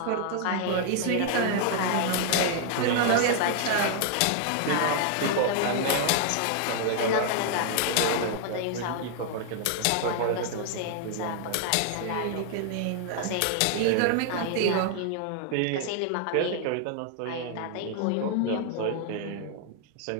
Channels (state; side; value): different; both; correlation 0.00